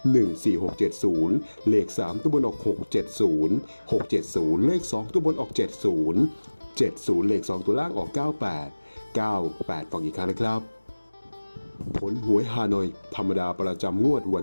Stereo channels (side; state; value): both; inverted; correlation -1.00